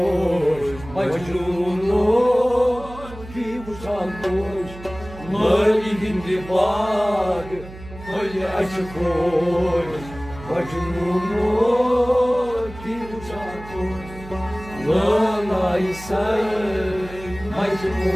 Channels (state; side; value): noise; right; hum, 15 dB below the sound